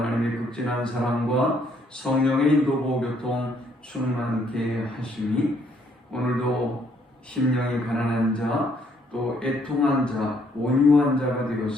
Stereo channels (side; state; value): both; normal; correlation 0.68